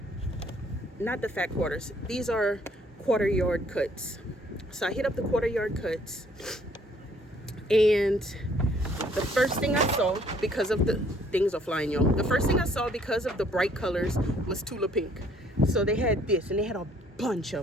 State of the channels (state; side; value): normal; both; correlation 0.62